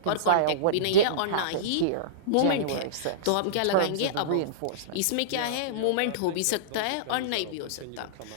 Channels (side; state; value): both; different; correlation -0.03